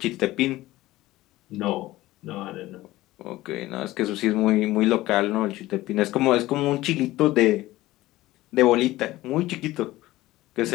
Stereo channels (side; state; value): right; quieter; 17.2 dB